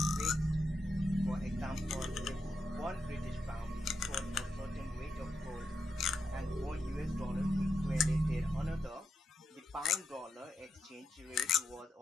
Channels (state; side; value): normal; both; correlation 0.84